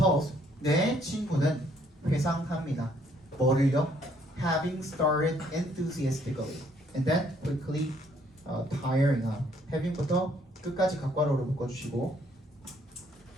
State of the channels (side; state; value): both; normal; correlation 0.66